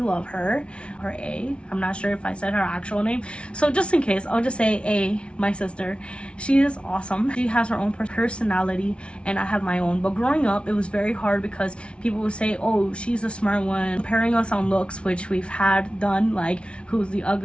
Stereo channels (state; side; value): late; right; 0.059 ms